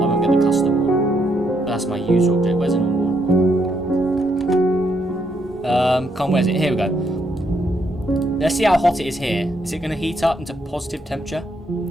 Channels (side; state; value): both; normal; correlation 0.75